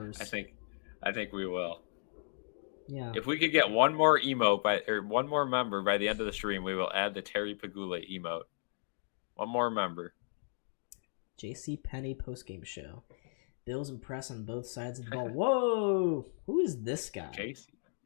I think we will. Yeah. If we could get one more emote one more member by the end of the stream, we will add the Terry Pagula emote. One more member. JC Penny postgame show. Bills impress on both sides of the ball. Whoa! Who is this guy? JC.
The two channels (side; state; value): right; silent; digital silence